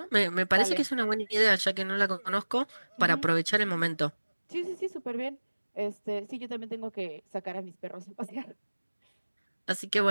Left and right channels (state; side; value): inverted; both; correlation -1.00